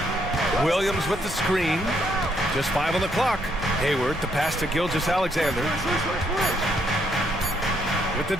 Williams with the screen. Just 5 on the clock. Hayward, the pass to Gilgeous-Alexander. With the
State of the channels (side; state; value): both; normal; correlation 0.72